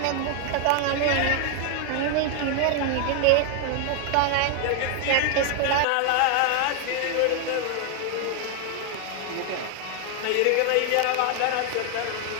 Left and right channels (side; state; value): both; different; correlation 0.01